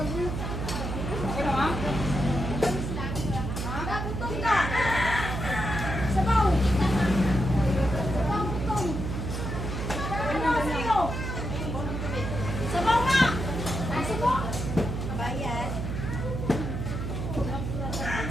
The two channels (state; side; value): noise; right; hum, 3 dB below the sound